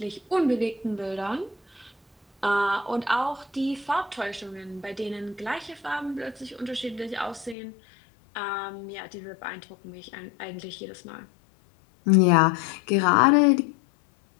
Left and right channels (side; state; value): right; drops out; at 7.6 s